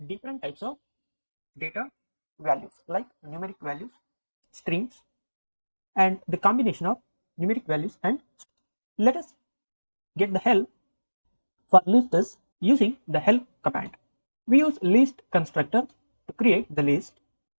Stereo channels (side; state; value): both; inverted; correlation -1.00